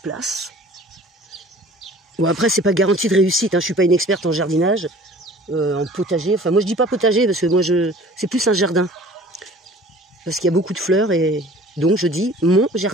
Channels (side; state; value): both; normal; correlation 0.47